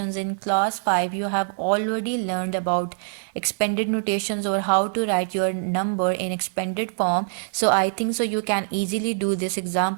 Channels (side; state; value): left; silent; digital silence